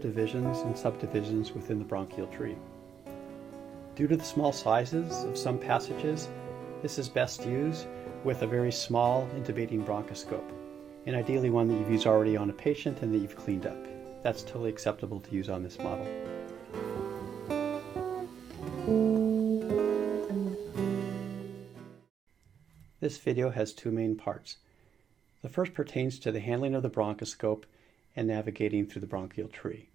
and subdivisions within the bronchial tree. Due to the small sizes of some passages, this is best used with a very small intubating bronchoscope, and ideally one that you've used already on a patient and that you've cleaned up. That's totally acceptable to use on this model. This video has two main parts. The first pertains to the handling of the bronchoscope and navigating through the bronchial tree.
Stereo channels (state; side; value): quieter; left; 7.8 dB